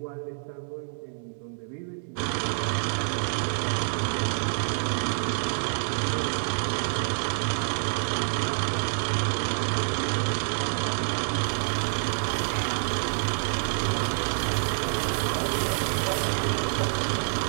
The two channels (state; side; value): silent; left; 60 dB below the other